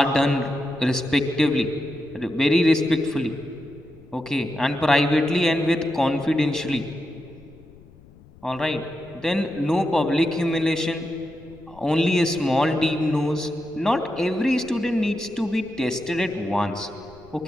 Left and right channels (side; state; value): left; noise; rumble, 24 dB below the sound